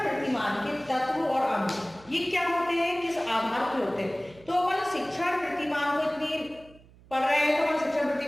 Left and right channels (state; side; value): noise; right; hum, 25 dB below the sound